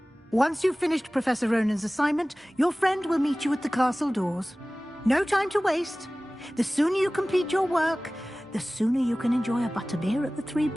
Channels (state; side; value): normal; both; correlation 0.98